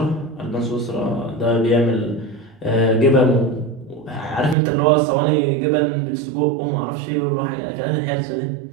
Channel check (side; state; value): left; drops out; at 4.5 s